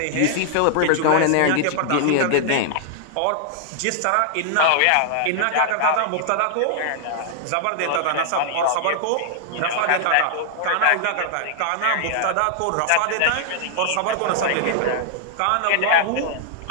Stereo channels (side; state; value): both; different; correlation -0.01